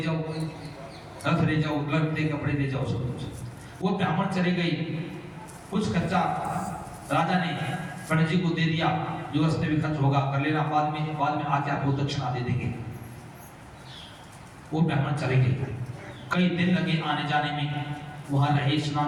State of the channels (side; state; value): both; identical; correlation 1.00